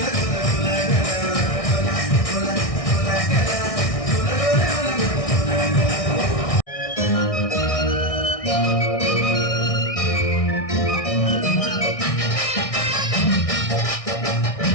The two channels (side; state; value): right; late; 1.6 ms